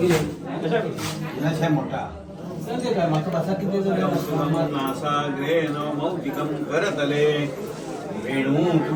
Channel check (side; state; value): both; identical; correlation 1.00